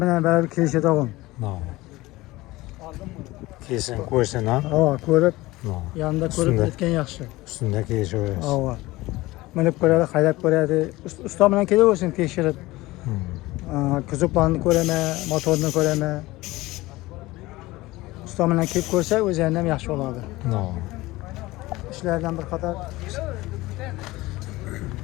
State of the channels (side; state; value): right; quieter; 19.4 dB